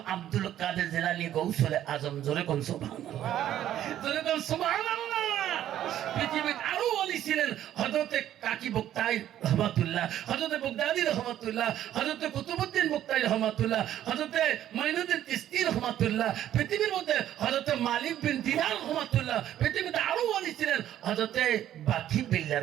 আব্দুল কাদের জিলানী গৌসুলে আজম। জোরে কোন সুবহানাল্লাহ, জোরে কোন সুবহানাল্লাহ। পৃথিবীর আরো অলি ছিলেন হযরতে কাকি বক্তাই রহমাতুল্লাহ, হযরতে বগদাদি রহমাতুল্লাহ, হযরতে কুতুবউদ্দিন বক্তাই রহমাতুল্লাহ, হযরতে মাইনুদ্দিন চিশতি রহমাতুল্লাহ। পৃথিবীর মধ্যে হযরতে মালিক বিন দিনার রহমাতুল্লাহ। পৃথিবীতে আরো অলি ছিলেন হযরতে বাকি বিল্লাহ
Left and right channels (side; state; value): left; quieter; 11.8 dB